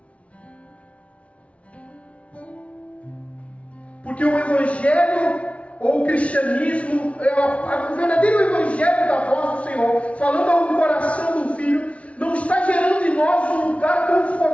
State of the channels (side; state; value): right; late; 0.063 ms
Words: Porque o Evangelho ou o cristianismo, o verdadeiro Evangelho da voz do Senhor, falando ao coração do Filho, não está gerando em nós um lugar